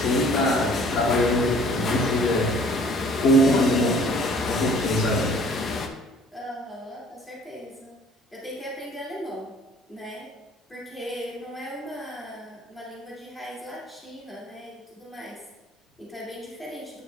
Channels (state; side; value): normal; both; correlation 0.54